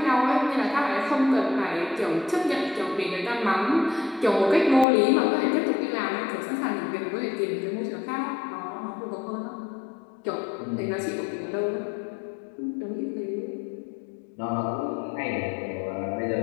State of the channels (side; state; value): right; drops out; at 4.9 s